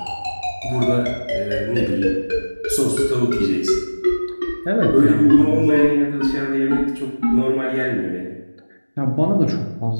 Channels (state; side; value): inverted; both; correlation -1.00